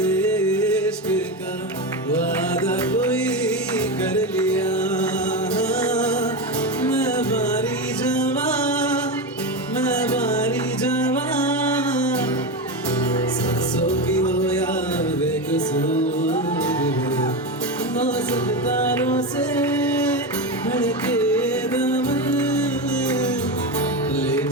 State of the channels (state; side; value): normal; both; correlation 0.17